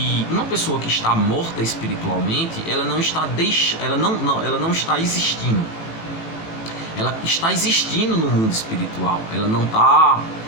uma pessoa que está morta espiritualmente, ela não está existindo. Ela está existindo no mundo espiritual. Ela não está...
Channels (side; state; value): right; late; 18 ms